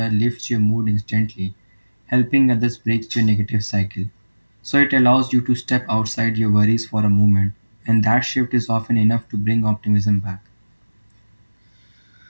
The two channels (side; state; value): both; inverted; correlation -1.00